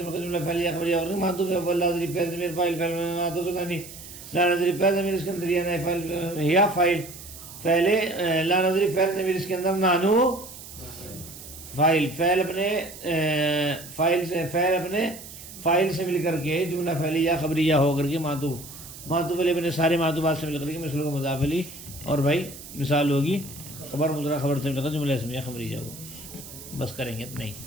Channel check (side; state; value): right; noise; hiss, 15 dB below the sound